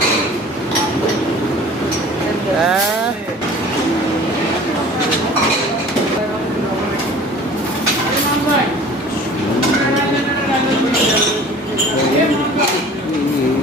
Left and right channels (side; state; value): both; normal; correlation 0.45